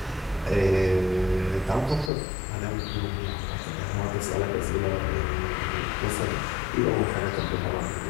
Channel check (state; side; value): drops out; right; at 2.1 s